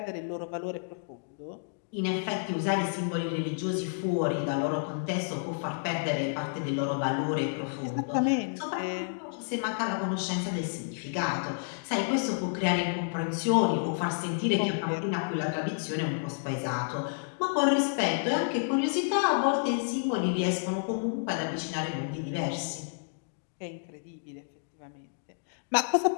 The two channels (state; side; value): silent; right; digital silence